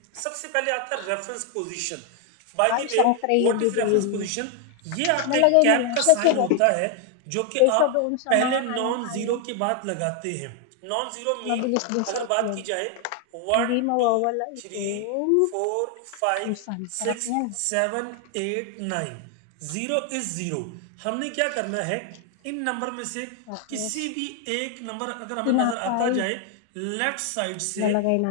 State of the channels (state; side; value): different; both; correlation 0.01